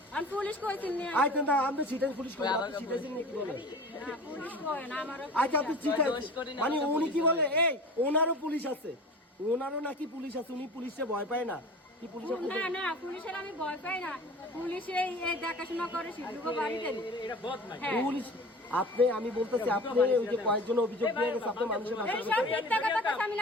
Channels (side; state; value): both; normal; correlation 0.38